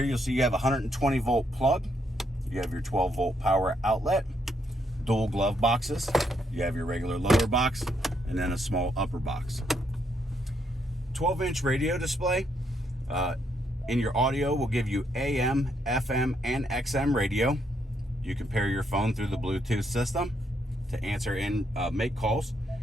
you'll see you have a 120-volt plug. You have your 12-volt power outlet, dual glove boxes. You have your regular lower box and then a small upper box. 12-inch radio display. In your audio will give you AM, FM, and XM radio. You can pair your phone through the Bluetooth system to answer and make calls.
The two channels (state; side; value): normal; both; correlation 0.75